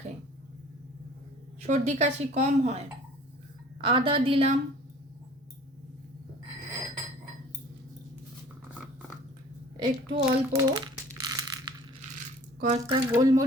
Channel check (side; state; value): both; normal; correlation 0.49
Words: সর্দি কাশি কম হয়। আদা দিলাম, একটু অল্প কয়েকটা